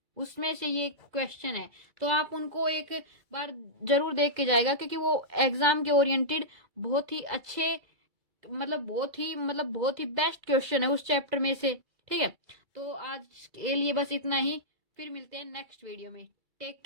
उसमें से ये क्वेश्चन है। तो आप उनको एक बार जरूर देख के जाएगा, क्योंकि वो एग्जाम के ओरिएंटेड बहुत ही अच्छे बहुत ही बेस्ट क्वेश्चन है उस चैप्टर में से, ठीक है। तो आज के लिए बस इतना ही, फिर मिलते हैं नेक्स्ट वीडियो में। Take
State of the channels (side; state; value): left; late; 2.3 ms